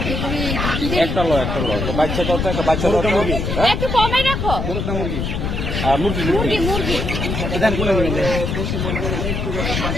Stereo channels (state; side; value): noise; left; rumble, 2 dB below the sound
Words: একটা লো তো বাচ্চা কত? একটা বাচ্চা মুরগি। একটু কমে রাখো। মুরগি মুরগি মুরগি এখানে কোন নেবেন?